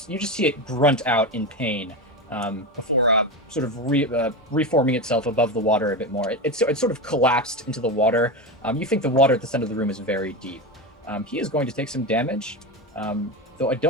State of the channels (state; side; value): normal; both; correlation 0.18